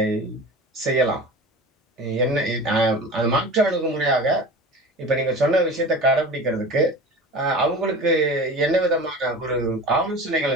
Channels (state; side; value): normal; both; correlation 0.35